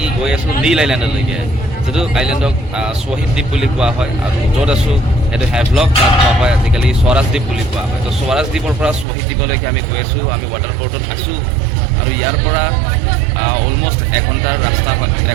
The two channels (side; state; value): left; drops out; at 9.1 s